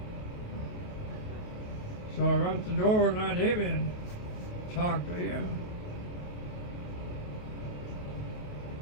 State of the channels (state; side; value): late; right; 28 ms